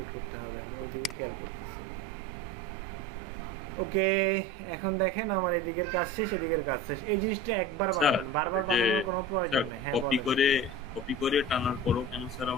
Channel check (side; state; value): both; normal; correlation 0.34